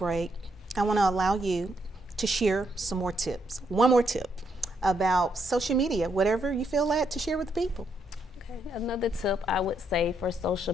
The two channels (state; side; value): normal; both; correlation 0.76